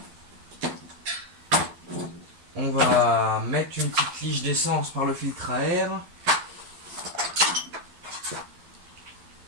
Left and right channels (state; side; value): late; left; 12 ms